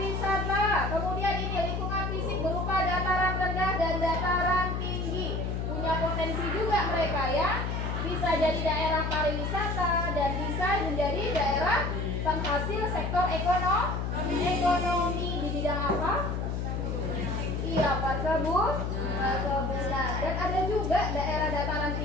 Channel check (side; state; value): left; noise; hum, 1 dB below the sound